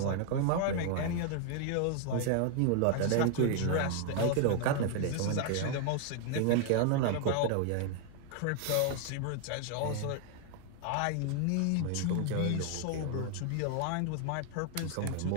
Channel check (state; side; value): different; both; correlation 0.00